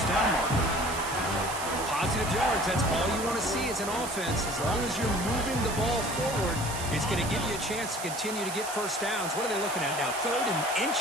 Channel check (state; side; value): noise; right; hiss, 8 dB below the sound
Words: down marker. Positive yards, that's all you want to see as an offense. As long as you're moving the ball forward, it's going to give you a chance to continue to get 1st downs. What are they looking at now? 3rd and